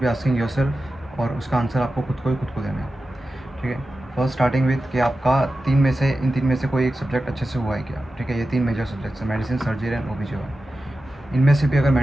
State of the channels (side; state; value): both; normal; correlation 0.93